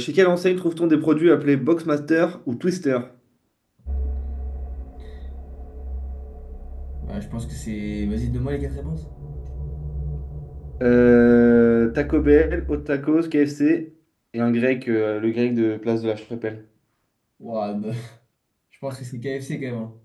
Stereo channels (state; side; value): identical; both; correlation 1.00